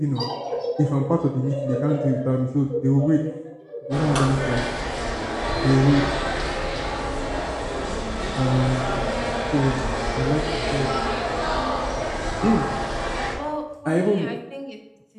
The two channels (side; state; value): both; identical; correlation 1.00